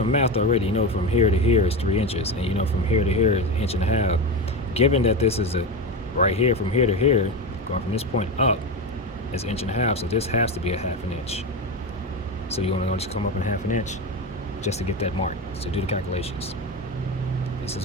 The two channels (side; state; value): both; normal; correlation 0.19